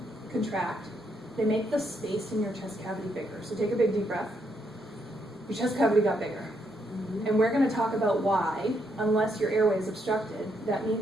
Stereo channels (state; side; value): normal; both; correlation 0.76